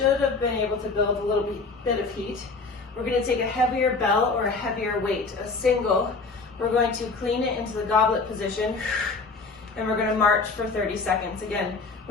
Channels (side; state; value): right; quieter; 4.1 dB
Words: have been able to build a little bit of heat. We're going to take a heavier bell or a heavier weight, a single. We're going to clean it into the goblet position, and we're going to march for 30 seconds. Again,